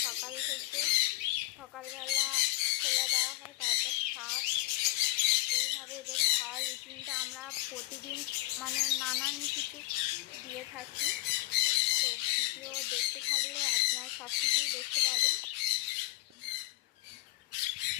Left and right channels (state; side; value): quieter; right; 17.7 dB